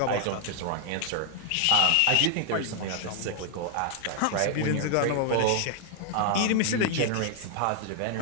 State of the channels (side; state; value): both; different; correlation 0.00